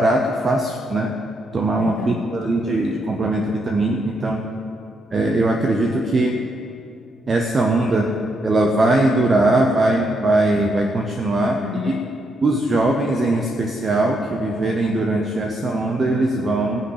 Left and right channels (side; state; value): both; normal; correlation 0.78